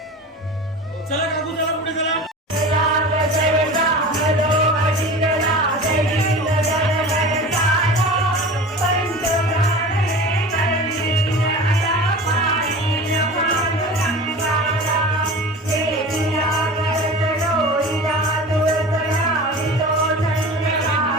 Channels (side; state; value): both; normal; correlation 0.35